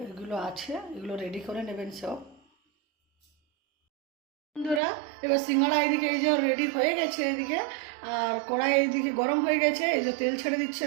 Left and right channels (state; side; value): drops out; left; at 4.8 s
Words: এগুলো আছে, এগুলো রেডি করে নেবেন সব। বন্ধুরা এবার সিঙ্গাড়া এদিকে এই যে রেডি হয়ে গেছে এদিকে, আর কড়াই এইদিকে গরম হয়ে গেছে, এই যে তেল ছেড়ে